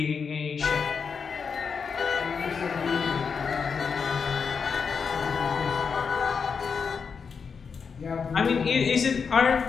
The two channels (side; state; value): right; quieter; 5.8 dB